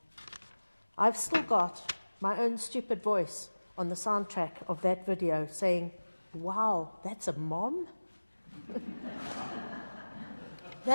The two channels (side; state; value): both; inverted; correlation -1.00